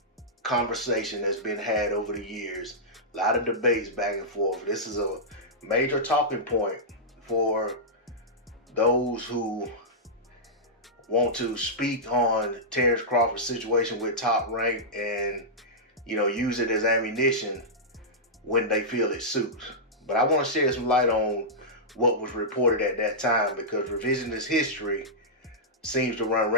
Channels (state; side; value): normal; both; correlation -0.12